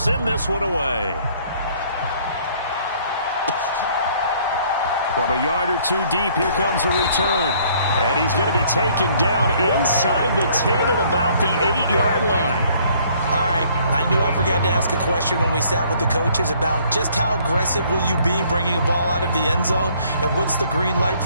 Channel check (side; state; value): both; inverted; correlation -0.61